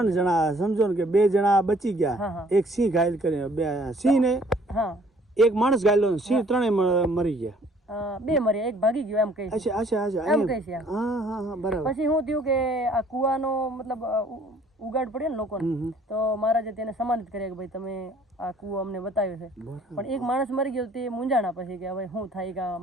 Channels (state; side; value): normal; both; correlation 0.58